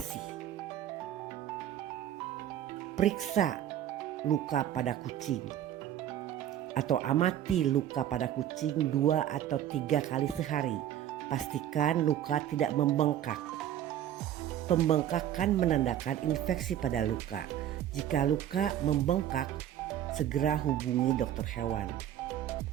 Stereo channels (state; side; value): quieter; left; 11.1 dB